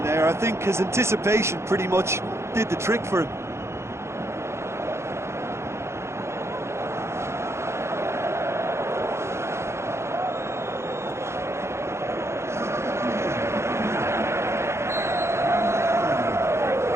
there. I think his anticipation pretty much did the trick for him.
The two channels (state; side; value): late; left; 0.13 ms